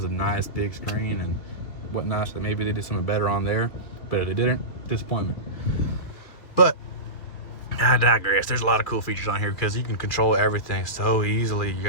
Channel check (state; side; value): late; right; 2.7 ms